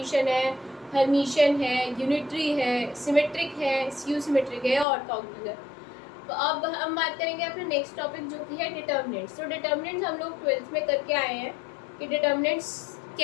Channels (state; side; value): drops out; right; at 4.9 s